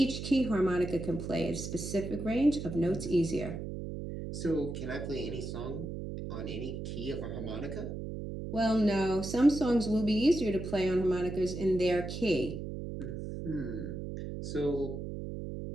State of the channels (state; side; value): noise; right; hum, 6 dB below the sound